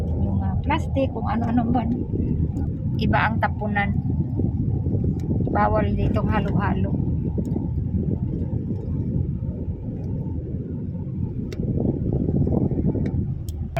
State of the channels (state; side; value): identical; both; correlation 1.00